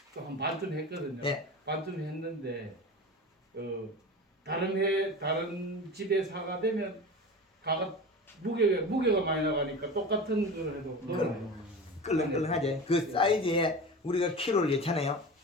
또 한 반쯤 했거든요. 네. 반쯤 했는데 다른 집에 사가 되면 가가 무게가 많이 나가니까 똑같은 걸 해도 놀아요. 끌렁끌렁하지. 그 사이즈에 우리가 키로를 예잖아요.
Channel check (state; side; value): normal; both; correlation 0.31